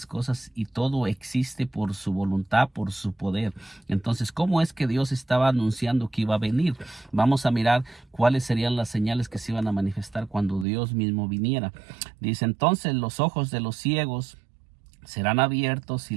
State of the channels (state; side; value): drops out; left; at 10.7 s